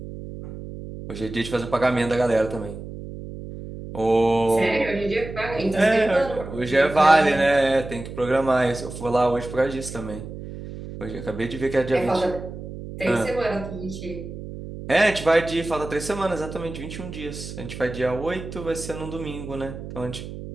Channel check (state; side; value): noise; right; hum, 11 dB below the sound